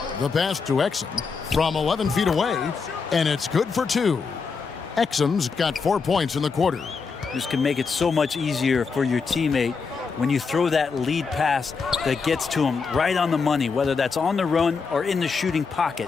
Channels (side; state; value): right; quieter; 5.1 dB